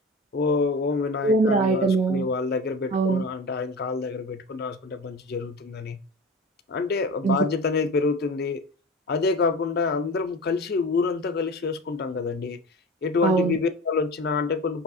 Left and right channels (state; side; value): normal; both; correlation 0.32